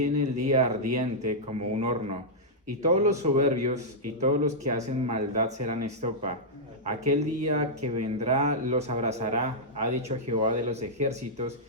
el día ardiente como un horno, y todos los soberbios y todos los que hacen maldad serán estopa. Aquel día que vendrá los abrazará, ha dicho Jehová de los ejércitos,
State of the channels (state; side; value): normal; both; correlation -0.08